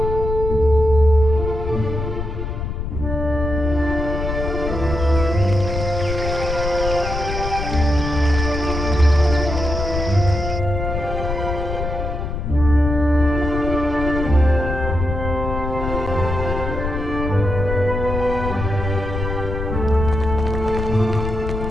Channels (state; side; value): noise; left; rumble, 4 dB below the sound